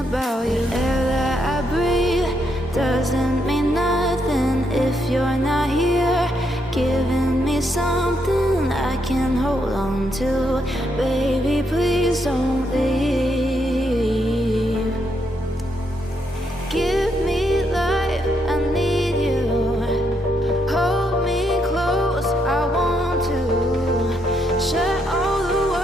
about you. Air that I breathe doesn't mean nothing if you're not here, giving me something I can hold on to. Baby, please don't leave. Give me life, I need you. Hold me close, I want to. Shut all the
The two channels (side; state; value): both; normal; correlation 0.77